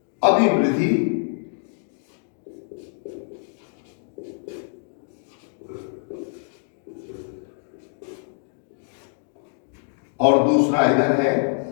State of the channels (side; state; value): right; silent; digital silence